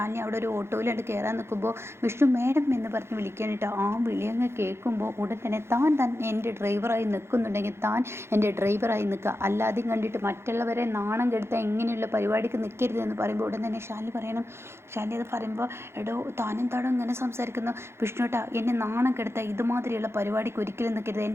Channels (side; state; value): left; late; 0.12 ms